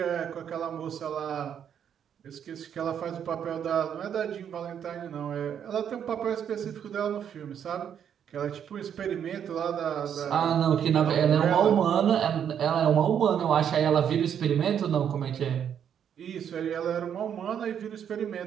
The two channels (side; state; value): left; quieter; 8.7 dB